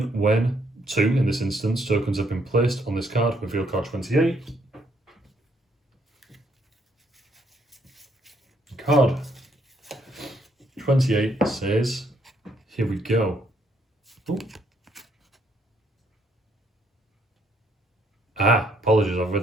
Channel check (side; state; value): both; normal; correlation 0.71